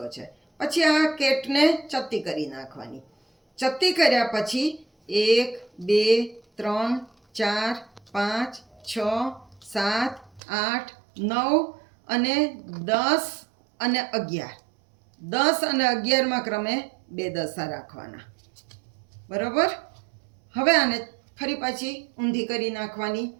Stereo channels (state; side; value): drops out; left; at 10.4 s